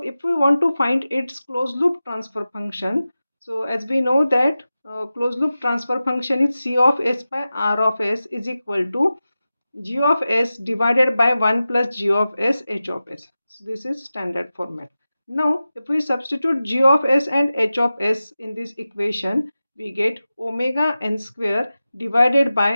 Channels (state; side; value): inverted; both; correlation -0.94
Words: we want to find its closed loop transfer function, so as we know that closed loop transfer function is C of S by R of S is equal to G of S divided by 1 plus G of S H of S. So this is standard format. Now, if we substitute G of S and H of S in this equation, we get omega n square divided